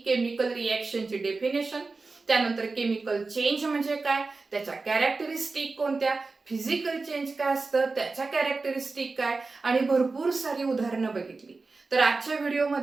केमिकल रिएक्शनचे डेफिनेशन, त्यानंतर केमिकल चेंज म्हणजे काय, त्याच्या कॅरेक्टरिस्टिक कोणत्या, फिजिकल चेंज काय असतं, त्याच्या कॅरेक्टरिस्टिक काय, आणि भरपूर सारी उदाहरणं बघितली. तर आजच्या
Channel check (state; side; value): quieter; left; 3.9 dB